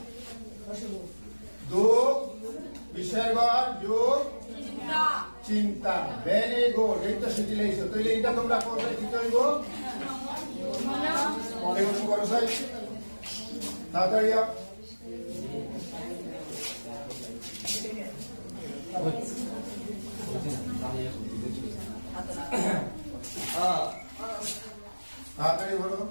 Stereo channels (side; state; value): both; inverted; correlation -1.00